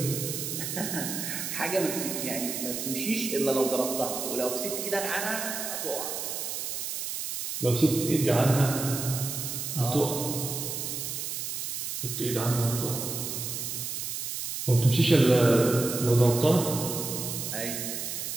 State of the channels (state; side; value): noise; right; hiss, 4 dB below the sound